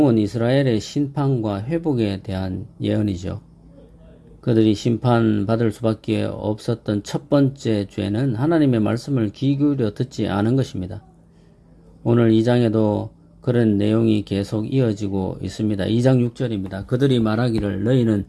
이스라엘의 심판과 회복에 대한 예언이죠. 그들이 심판받을 수밖에 없었던 첫 번째 죄는 하나님의 말씀을 귀 기울여 듣지 않은 것입니다. 오늘 2장에도 그런 내용이 계속 이어지고 있습니다. 2장 6절입니다. 그들이 말하기를 너희는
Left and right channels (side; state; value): both; identical; correlation 1.00